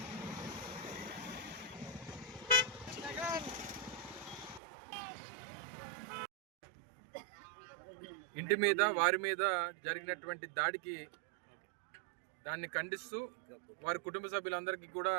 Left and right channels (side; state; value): left; drops out; at 4.6 s